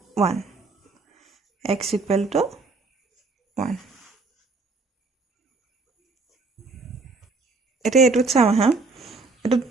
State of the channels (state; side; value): quieter; left; 3.8 dB